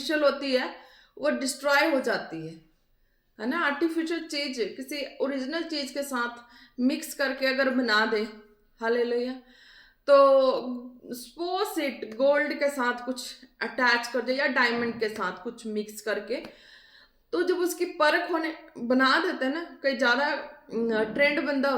होती है वो डिस्ट्रॉय हो जाती है ना। आर्टिफिशियल चीज किसी ओरिजिनल चीज के साथ मिक्स करके अगर बना दे, हालेलुया, तो सपोज इट गोल्ड के साथ कुछ अटैच कर दे या डायमंड के साथ कुछ मिक्स करके, तो जब उसकी परख होने बना देते हैं ना, कई ज्यादा ट्रेंड बंदा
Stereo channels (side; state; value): both; identical; correlation 1.00